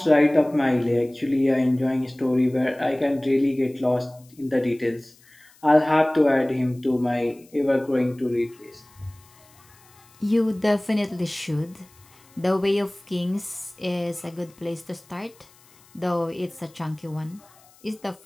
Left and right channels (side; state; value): left; noise; hiss, 28 dB below the sound